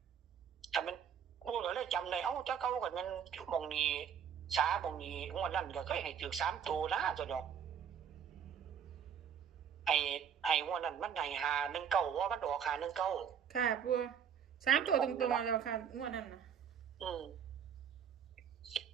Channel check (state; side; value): quieter; left; 8.1 dB